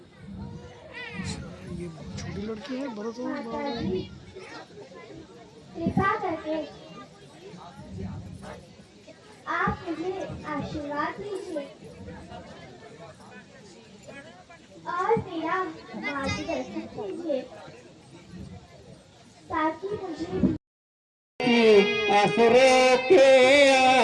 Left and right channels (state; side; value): identical; both; correlation 1.00